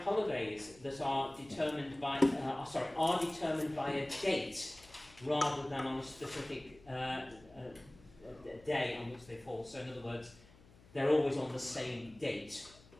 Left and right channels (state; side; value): noise; left; hum, 24 dB below the sound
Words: holidays that are determined by a date rather than on a specific day on which they fall? So in other words, they're always on the same date.